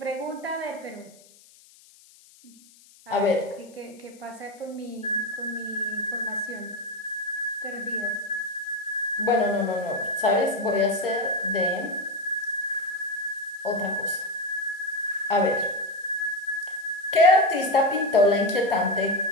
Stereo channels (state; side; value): noise; left; hiss, 26 dB below the sound